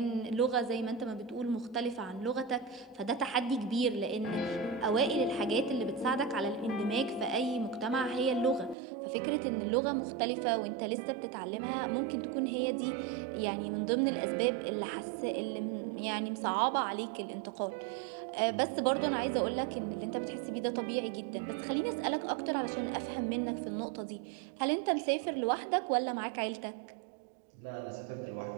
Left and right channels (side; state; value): left; drops out; at 8.8 s